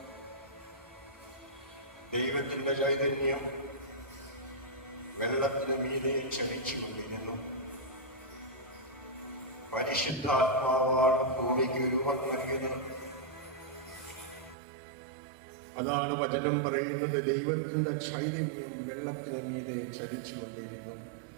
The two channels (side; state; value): left; drops out; at 14.6 s